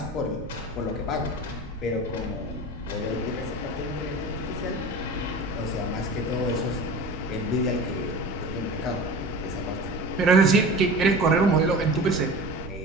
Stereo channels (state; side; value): noise; right; rumble, 14 dB below the sound